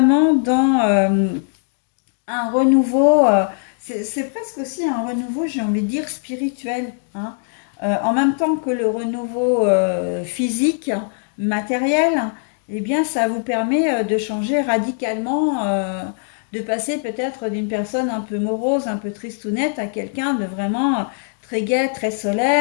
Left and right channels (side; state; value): right; silent; 65 dB below the other